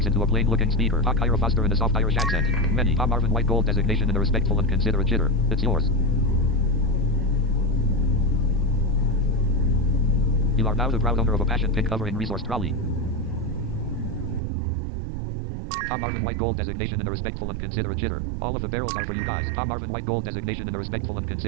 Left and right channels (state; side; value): drops out; left; at 14.4 s